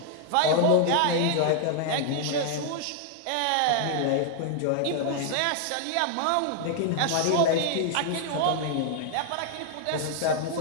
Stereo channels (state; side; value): different; both; correlation 0.00